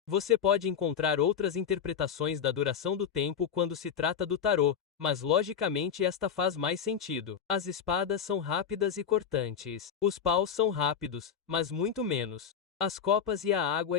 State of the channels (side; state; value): right; quieter; 7.6 dB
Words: Você pode encontrar outras interpretações da duração do tempo quando se trata do tarô, mas logicamente esta faz mais sentido. As espadas são rápidas e cortantes. Os paus são rápidos, mas muito menos. As copas e a